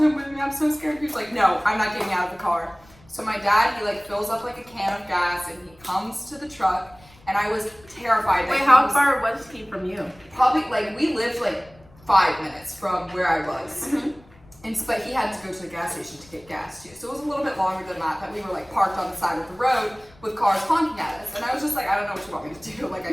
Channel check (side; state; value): left; noise; rumble, 26 dB below the sound